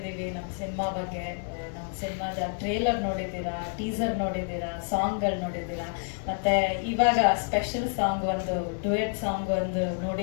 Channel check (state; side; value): silent; right; 59 dB below the other